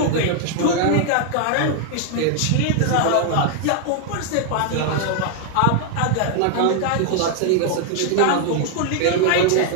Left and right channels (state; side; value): different; both; correlation 0.00